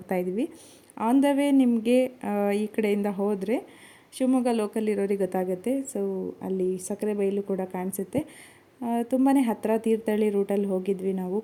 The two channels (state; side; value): identical; both; correlation 1.00